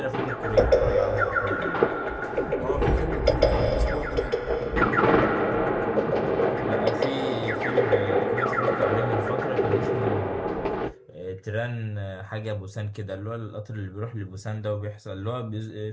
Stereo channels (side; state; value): both; identical; correlation 1.00